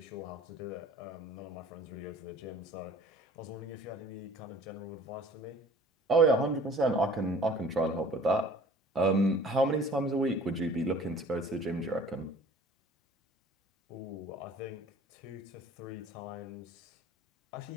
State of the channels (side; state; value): both; normal; correlation 0.49